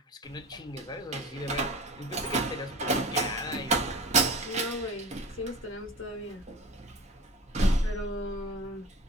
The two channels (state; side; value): normal; both; correlation 0.34